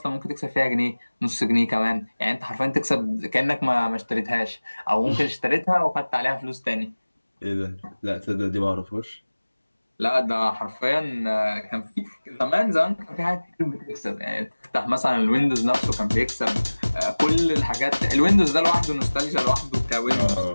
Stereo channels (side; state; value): both; inverted; correlation -1.00